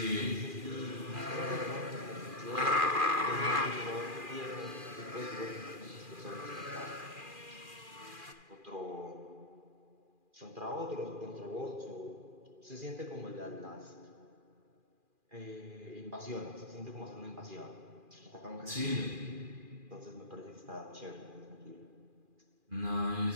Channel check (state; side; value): late; left; 2.4 ms